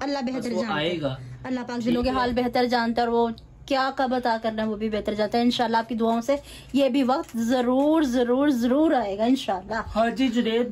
अल्लाह बेहतर बस वो जानता है। आएगा। अल्लाह पाक दिलों के हाल बेहतर जानता है और वो क्या कब अता करना है वो भी बेहतर जानता है। इंशाल्लाह आपकी दुआओं से ये भी वक्त जरूर जरूर जरूर आएगा इंशाल्लाह। हाँ जी जुनेद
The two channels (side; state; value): both; identical; correlation 1.00